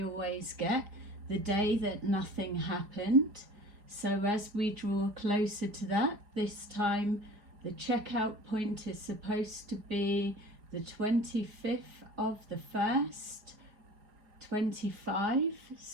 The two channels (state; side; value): late; left; 4.9 ms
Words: always get, the day that nothing happened. So as we draw closer to that, this time the checkout point is supposed to be the 25th of the 1st, 25.